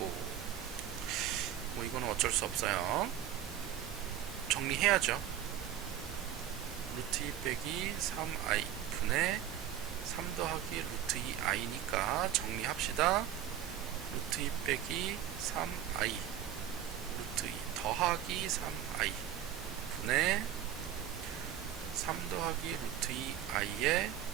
뭐 이거는 어쩔 수 없어요. 정리해야죠. 루트 2 빼기 3i 분의 3 더하기 루트 2i니까 정리합시다. 루트 2 빼기 3i 루트 2 더하기 3i 분의 3 더하기 루트 2i의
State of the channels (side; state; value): left; quieter; 10.5 dB